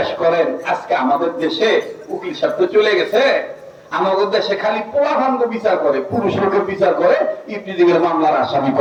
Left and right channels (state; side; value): identical; both; correlation 1.00